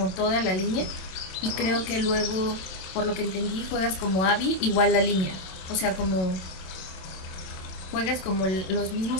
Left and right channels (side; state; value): right; late; 27 ms